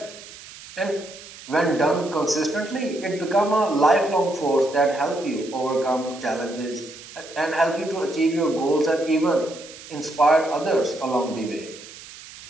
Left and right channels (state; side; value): noise; right; hiss, 17 dB below the sound